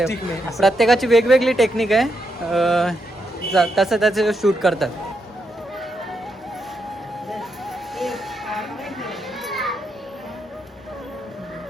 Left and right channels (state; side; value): normal; both; correlation 0.81